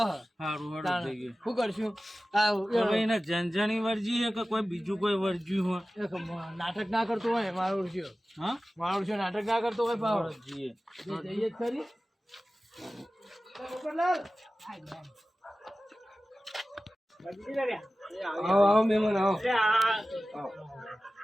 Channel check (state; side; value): normal; both; correlation 0.96